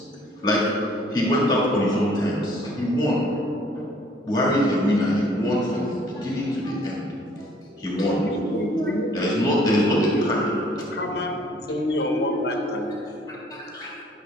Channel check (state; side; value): normal; both; correlation 0.59